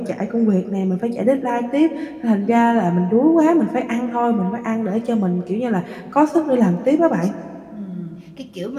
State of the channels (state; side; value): identical; both; correlation 1.00